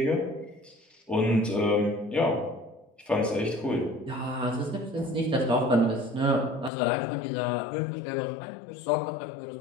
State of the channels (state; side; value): drops out; right; at 6.7 s